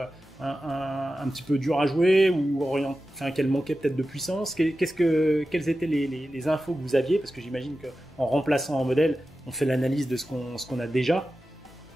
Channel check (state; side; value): normal; both; correlation 0.93